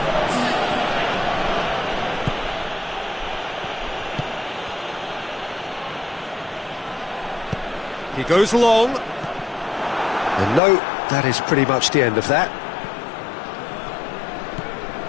He goes long. And no, that is pretty much the end of that.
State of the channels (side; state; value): right; drops out; at 10.6 s